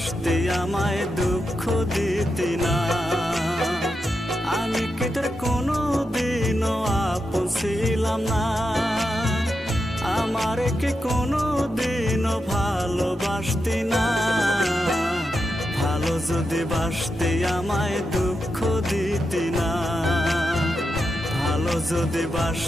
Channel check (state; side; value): normal; both; correlation 0.87